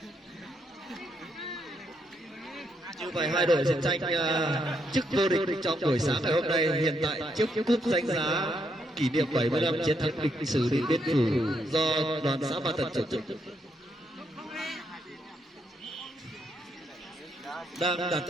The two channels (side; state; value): both; normal; correlation 0.77